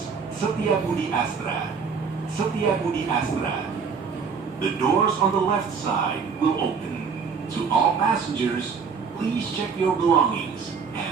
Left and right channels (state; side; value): quieter; left; 5.8 dB